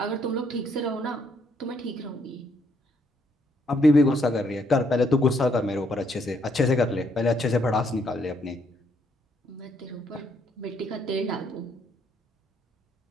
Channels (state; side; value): normal; both; correlation 0.71